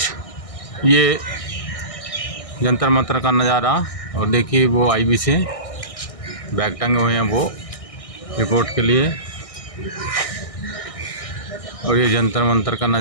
ये जंतर मंतर का नज़ारा। और देखिए वो आईबी से बैग टंगे हुए हैं वो रिपोर्ट के लिए। और ये जंतर मंतर का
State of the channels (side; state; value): right; late; 1.6 ms